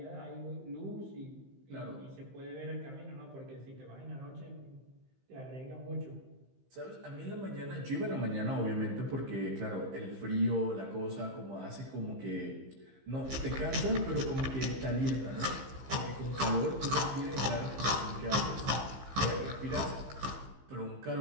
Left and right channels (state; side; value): late; left; 15 ms